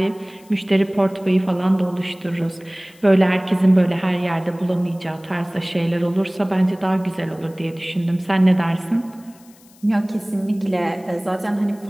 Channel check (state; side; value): noise; left; hiss, 27 dB below the sound